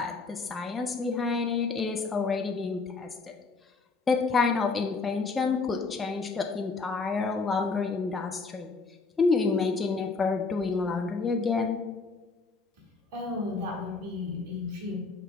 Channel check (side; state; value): right; quieter; 4.2 dB